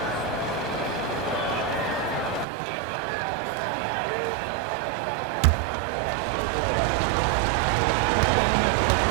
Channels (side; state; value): left; drops out; at 2.5 s